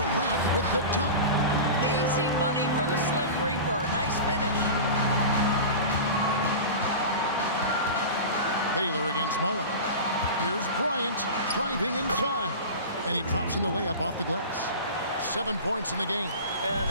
with the dunk. Easy money for the Slim Reaper. Nice finish. Baylor against Mullen. Here's Bryant driving inside. And he drops in the layup off the glass. 7 points in the game.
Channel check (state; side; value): inverted; both; correlation -0.30